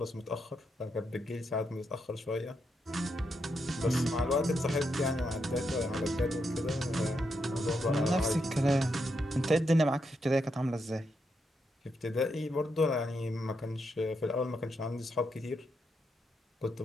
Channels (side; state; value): both; normal; correlation 0.81